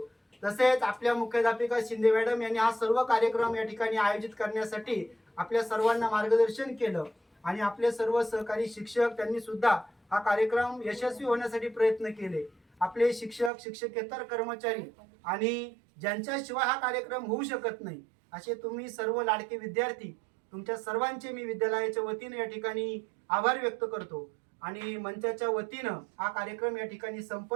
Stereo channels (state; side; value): drops out; left; at 13.5 s